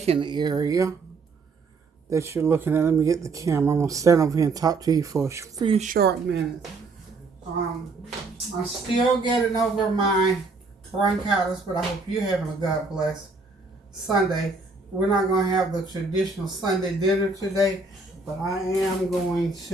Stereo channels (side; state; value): left; quieter; 3.8 dB